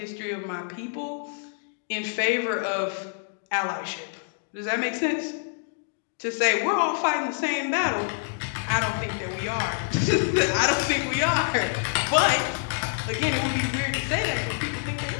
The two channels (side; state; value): right; silent; digital silence